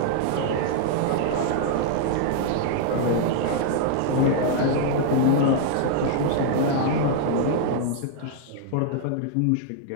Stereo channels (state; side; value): different; both; correlation -0.01